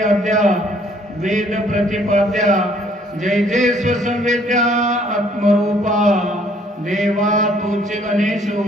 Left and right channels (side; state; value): both; normal; correlation 0.62